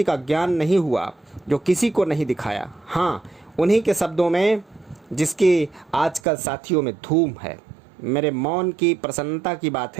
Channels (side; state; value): left; drops out; at 6.2 s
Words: का ज्ञान नहीं हुआ जो किसी को नहीं दिखाया। हाँ, उन्हीं के शब्दों में जिसकी आजकल साथियों में धूम है। मेरे मौन की प्रसन्नता की बात